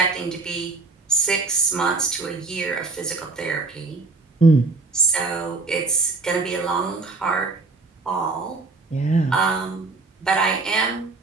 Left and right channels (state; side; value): quieter; left; 3.7 dB